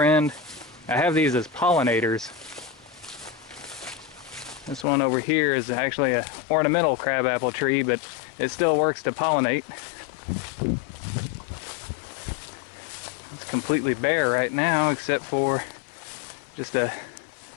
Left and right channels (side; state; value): right; drops out; at 4.9 s